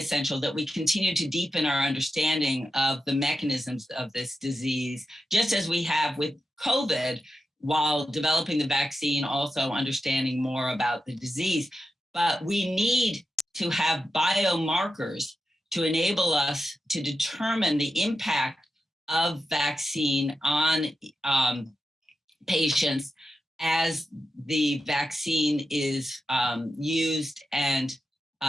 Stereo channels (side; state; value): both; normal; correlation 0.90